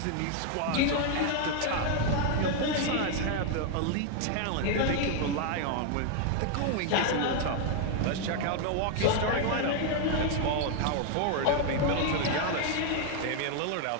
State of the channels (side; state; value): both; different; correlation 0.00